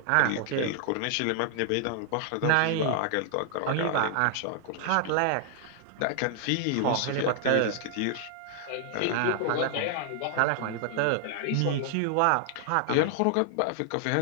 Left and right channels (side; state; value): both; different; correlation -0.01